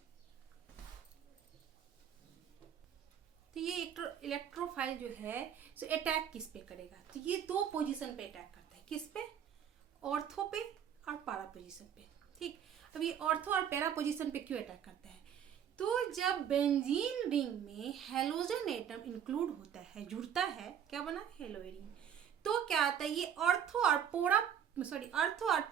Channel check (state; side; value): quieter; left; 8.8 dB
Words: तो ये इलेक्ट्रोफाइल जो है तो अटैक किस पे करेगा? तो ये दो पोजीशन पे अटैक करता है। किस पे? ऑर्थो पे और पैरा पोजीशन पे। ठीक, अब ये ऑर्थो और पैरा पोजीशन पे क्यों अटैक करता है? तो जब बेंजीन रिंग में हेलोजन एटम इंक्लूड होता है, जुड़ता है, क्या बना? Hello Adin. तो क्या आता है? ये ऑर्थो और